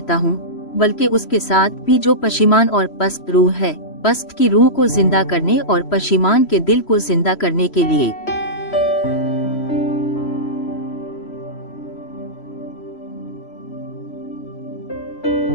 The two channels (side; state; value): right; late; 3.0 ms